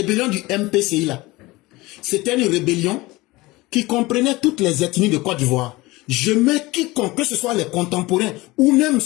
du MPCI là, c'était une rébellion qui comprenait toutes les ethnies de Côte d'Ivoire. Je mets quiconque, que ce soit les contemporains ou même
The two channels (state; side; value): quieter; right; 20.9 dB